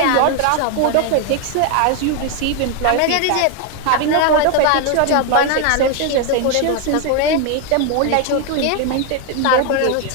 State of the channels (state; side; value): different; both; correlation 0.01